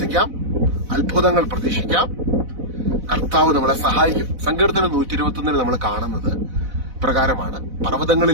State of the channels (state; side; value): late; left; 4.0 ms